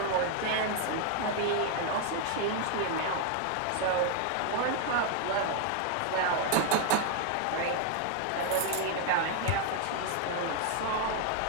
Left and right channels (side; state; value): both; different; correlation 0.00